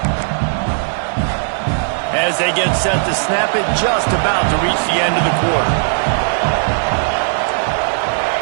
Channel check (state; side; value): silent; left; digital silence